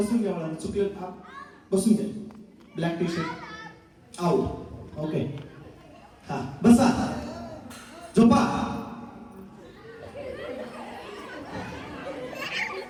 घ्या. मला चुकलं. बसून घ्या. Black tea shirt out. Okay. हा, बसा, झोपा.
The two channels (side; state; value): both; identical; correlation 1.00